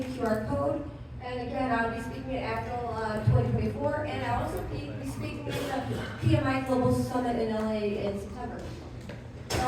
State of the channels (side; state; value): both; identical; correlation 1.00